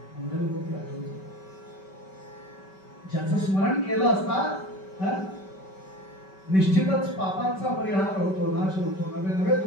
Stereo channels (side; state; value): right; late; 5.2 ms